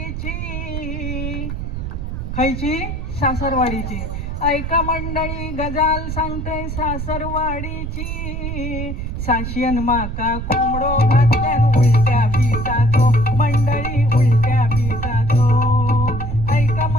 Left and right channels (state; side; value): noise; right; rumble, 5 dB below the sound